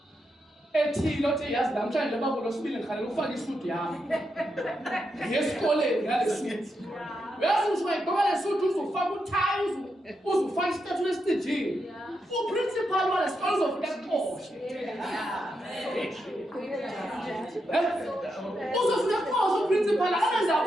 ethile othi yazi namhlanje babo losibili ngikhalela ufake isuit yami. Ngesikoleni ngale suit. Yazi usuyigqoka le suit uzofaka utie uzofaka istatue esitejini. Uprincipal wale sikole uzofika kuqoshe. Uzofika kuqoshe uprincipal angenza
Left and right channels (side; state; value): both; normal; correlation 0.84